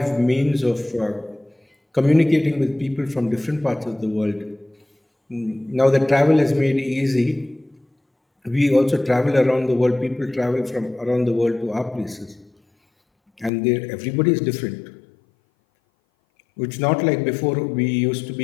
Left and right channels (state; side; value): drops out; right; at 13.5 s